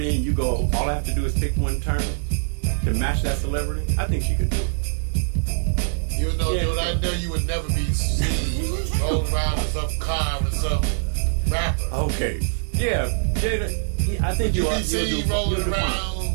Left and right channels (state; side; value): silent; left; digital silence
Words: and you go, all I have to do is pick one term to match that celebrity, I think she could do it. Even though, dude, I know you would never be seen rolling around in some car with some rapper. Okay. Yeah, Jada, I think you'll be seen rolling around